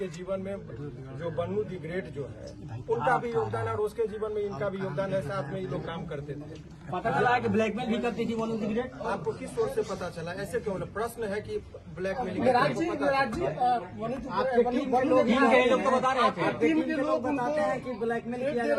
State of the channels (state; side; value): identical; both; correlation 1.00